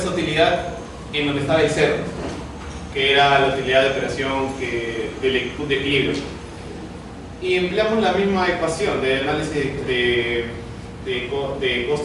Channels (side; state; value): both; identical; correlation 1.00